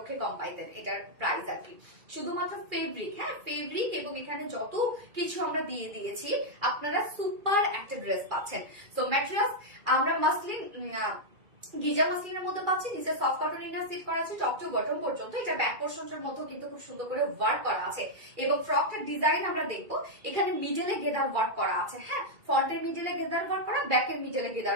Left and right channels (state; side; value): late; left; 2.4 ms